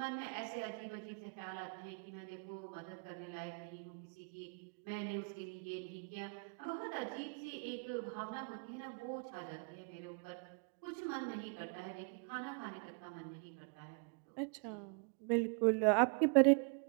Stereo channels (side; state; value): left; quieter; 36.6 dB